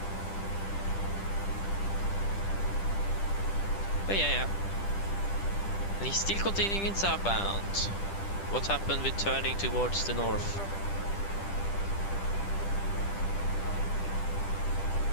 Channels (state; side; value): late; right; 10 ms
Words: But yeah. And he's still continuing southbound. What happened with turning towards the north?